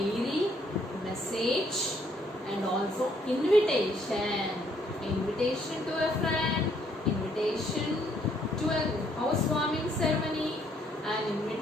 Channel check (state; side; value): normal; both; correlation 0.68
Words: message and also invitation. Invitation to a friend, invitation to a housewarming ceremony, an